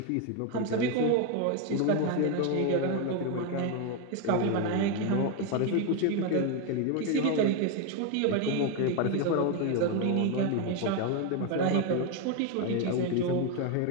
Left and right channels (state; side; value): different; both; correlation 0.02